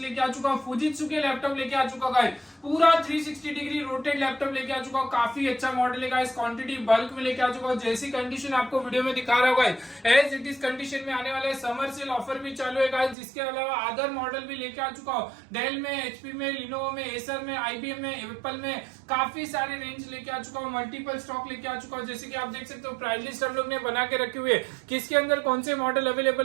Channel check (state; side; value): drops out; left; at 13.2 s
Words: आ चुका हूँ फुजित्सु के लैपटॉप लेके आ चुका गाइस, पूरा 360 डिग्री रोटेट लैपटॉप लेके आ चुका हूँ। काफी अच्छा मॉडल है गाइस, क्वांटिटी बल्क में लेके आ चुका हूँ। जैसी कंडीशन आपको वीडियो में दिखा रहा होगा एज इट इज कंडीशन में आने वाले समर सेल ऑफर भी चालू है गाइस। जिसके अलावा अदर मॉडल भी लेके आ चुका हूँ, डेल में, एचपी में, लिनोवो में, एसर में, आईबीएम में, एप्पल में, काफी सारे रेंज लेके आ चुका हूँ। मल्टीपल स्टॉक लेके आ चुका हूँ। जैसे कि आप देख सकते हो प्राइस लिस्ट हम लोग ने बना के रखे हुए, किसके अंदर कौन से मॉडल